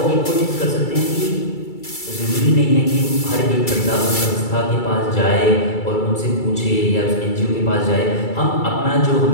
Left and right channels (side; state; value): right; late; 2.3 ms